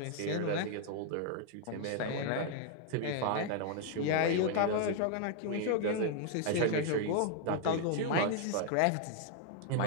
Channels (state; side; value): different; both; correlation 0.00